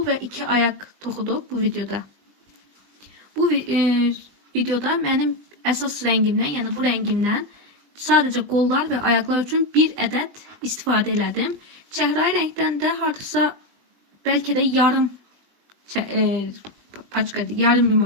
ve 2 ayak toxuduq bu videoda. Bu videoda mənim əsas rəngimdən, yəni bu rəngimdən sadəcə qollar və ayaqlar üçün bir ədəd istifadə elədim. Çəhrayı rəngdən də hardasa bəlkə də yarım paçka, yarım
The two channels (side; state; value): left; late; 20 ms